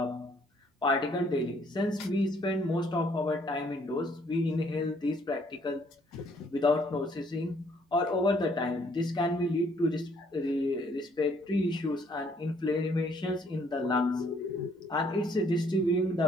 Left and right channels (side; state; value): both; normal; correlation 0.65